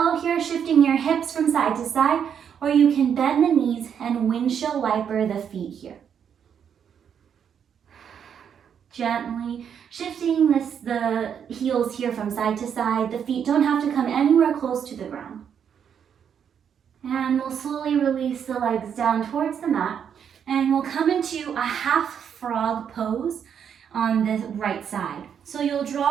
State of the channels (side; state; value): left; quieter; 8.0 dB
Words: here, shifting your hips from side to side, or you can bend the knees and windshield wiper the feet here. Gently shifting the heels here from side to side. The feet don't have to come anywhere close to the ground. And we'll slowly release the legs down towards the mat. And we'll come into a half frog pose on the right side. So you'll